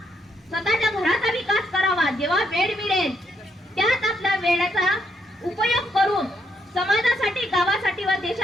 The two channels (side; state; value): both; normal; correlation 0.76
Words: स्वतःच्या घराचा विकास करावा. जेव्हा वेळ मिळेल त्यात आपल्या वेळेचा उपयोग करून समाजासाठी, गावासाठी व